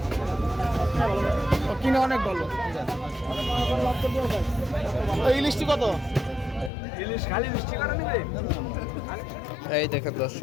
কিনা অনেক ভালো ইলিশটি কত এই দেখেন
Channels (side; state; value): right; drops out; at 6.7 s